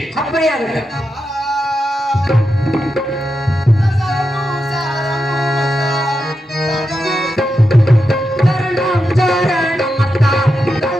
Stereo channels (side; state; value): both; normal; correlation 0.87